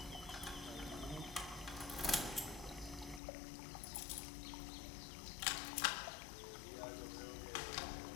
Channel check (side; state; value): right; drops out; at 3.2 s